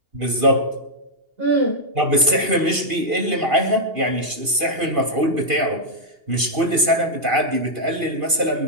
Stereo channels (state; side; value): late; left; 2.8 ms